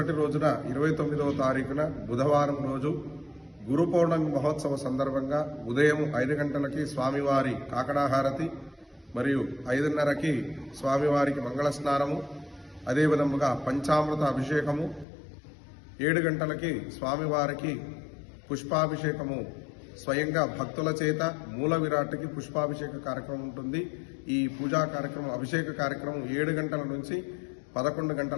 రోజున 29వ తారీఖున బుధవారం రోజు గురు పౌర్ణమి మహోత్సవ సందర్భంగా ఉదయం 5 గంటలకి స్వామివారి కాకడాహారతి మరియు 5:30కి స్వామివారికి మంగళ స్నానము, అదేవిధముగా పంచామృత అభిషేకము, 7 గంటలకి స్వామివారికి పుష్పాభిషేకము స్వయంగా భక్తుల చేత మూల విరాట్కి పుష్పాభిషేక కార్యక్రమం ఉంటుంది. ఈ పూజా కార్యక్రమం అభిషేక కార్యక్రమం 7 గంటల నుంచి 11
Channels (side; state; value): right; drops out; at 15.1 s